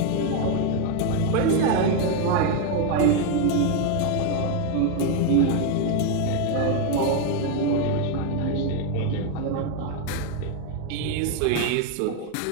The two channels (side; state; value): both; different; correlation 0.01